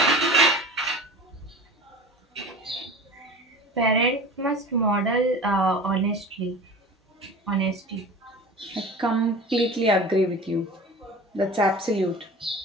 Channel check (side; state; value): both; normal; correlation 0.37